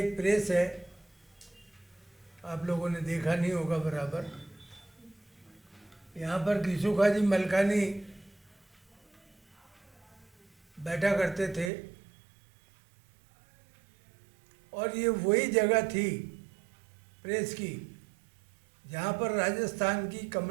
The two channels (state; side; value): drops out; left; at 11.7 s